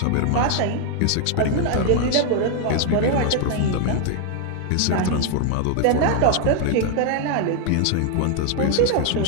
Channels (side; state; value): both; different; correlation 0.00